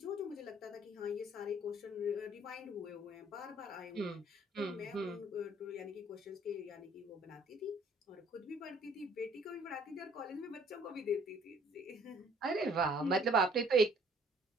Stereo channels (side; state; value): both; normal; correlation 0.58